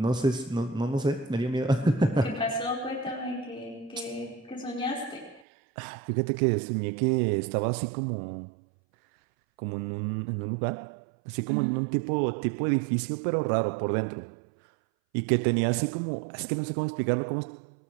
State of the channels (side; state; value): left; drops out; at 5.4 s